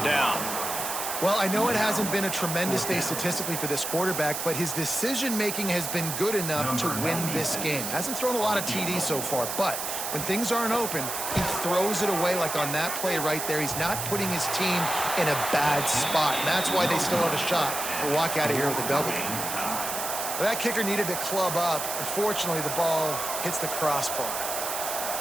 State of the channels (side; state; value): right; noise; hiss, 4 dB below the sound